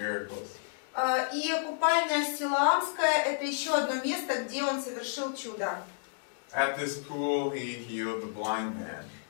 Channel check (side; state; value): right; silent; digital silence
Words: И купальня Силаамская — это еще одно место, где он совершил чудо. At this pool, he healed the blind man.